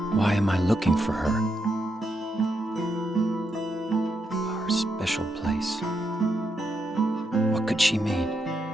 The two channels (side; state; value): both; normal; correlation 0.82